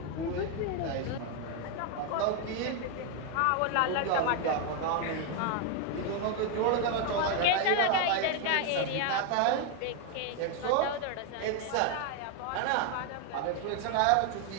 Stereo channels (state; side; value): different; both; correlation 0.01